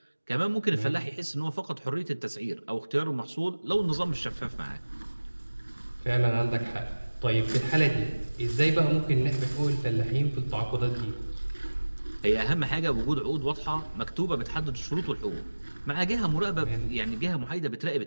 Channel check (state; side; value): inverted; both; correlation -1.00